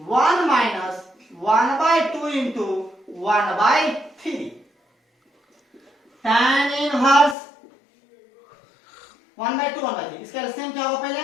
1 minus 1/2 into 1/3। tan inverse 1/2 1/3, इसका एलसीएम क्या होगा, पहले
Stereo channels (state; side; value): drops out; right; at 7.4 s